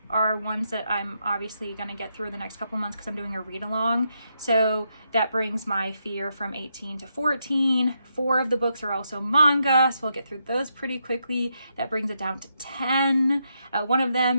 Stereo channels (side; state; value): both; inverted; correlation -0.80